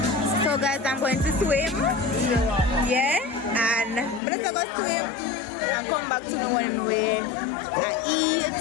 So guys, I'm going to swim. Yeah, and I'm gonna go swim and come back to the when we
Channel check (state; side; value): drops out; right; at 4.2 s